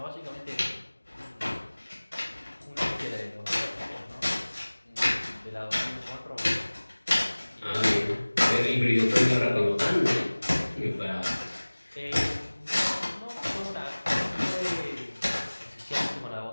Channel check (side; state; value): both; inverted; correlation -1.00